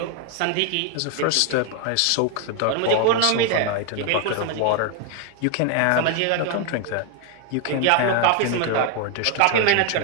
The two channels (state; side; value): different; both; correlation 0.00